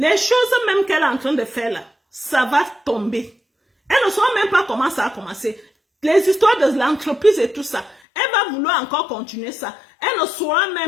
choses même qu'elle est en train de faire là, ça va tomber. Elle ne saura même pas comment ça a commencé. Les histoires de l'entreprise et tout ça, elle va vouloir encore continuer ça. Elle ne saura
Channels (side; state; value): right; drops out; at 8.0 s